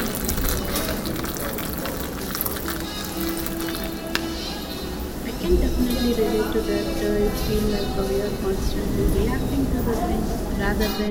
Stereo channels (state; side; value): identical; both; correlation 1.00